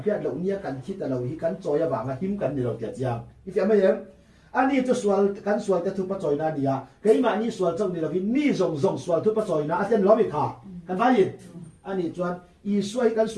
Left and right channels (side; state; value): both; identical; correlation 1.00